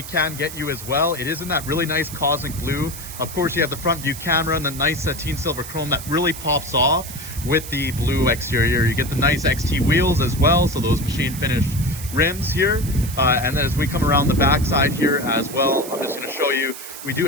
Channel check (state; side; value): noise; right; hiss, 11 dB below the sound